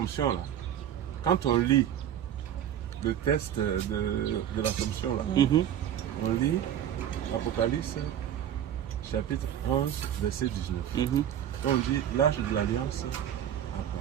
là, quand on lit le texte de l'Assomption, là, on lit Apocalypse chapitre 11, verset 19. On dit l'âge de l'Alliance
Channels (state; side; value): quieter; left; 10.3 dB